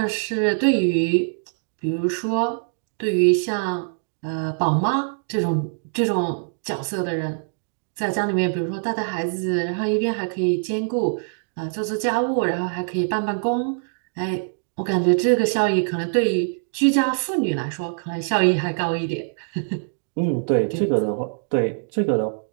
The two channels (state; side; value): silent; left; digital silence